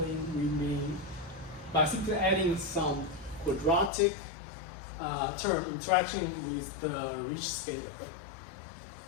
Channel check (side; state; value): right; drops out; at 3.9 s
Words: we mean by simply adding some quadratic term interaction with the rich scalar.